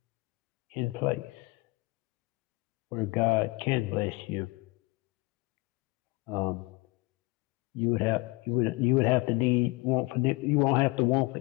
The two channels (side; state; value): right; quieter; 23.1 dB